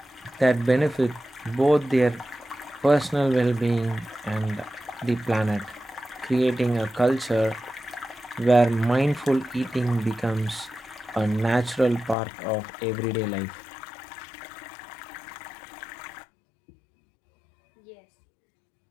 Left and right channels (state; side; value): drops out; right; at 12.2 s